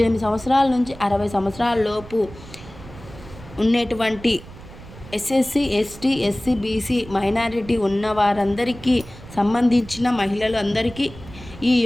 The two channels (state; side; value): noise; right; rumble, 17 dB below the sound